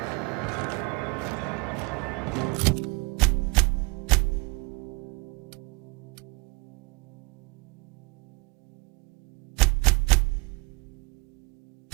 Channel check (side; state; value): left; quieter; 28.4 dB